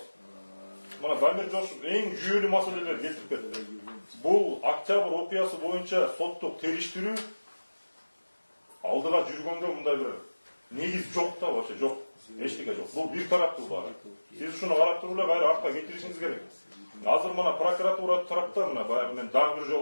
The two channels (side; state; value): both; inverted; correlation -1.00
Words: Мына Дамир Жошов эң жүйөлүү маселелерди келтирип кетти. Бул Октябрь окуясы боюнча соттук териштирүү алдыга жүргөнгө мындай бир негиз жок да, вообще жок. Эчтеке жок. Бул бир тараптуу баары. Сиз ушуну карап туруп эле кайра артка кетиришиңиз керек. Азыр мына прокуратура тарапта мына баягы мен дагы бир